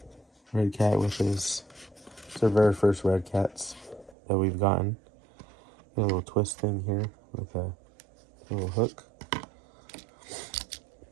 Redcat with his, it's our very first redcats that we've gotten. Got a little twist thing here with a little hook.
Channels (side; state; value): left; drops out; at 4.2 s